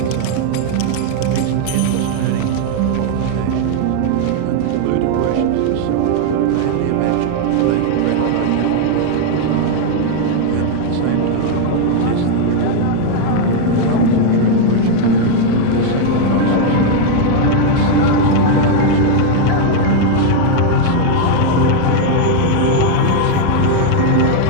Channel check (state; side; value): different; both; correlation 0.00